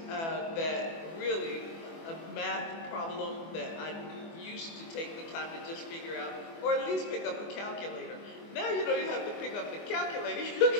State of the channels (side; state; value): right; late; 24 ms